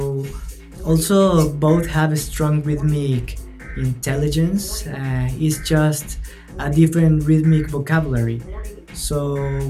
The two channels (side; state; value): both; identical; correlation 1.00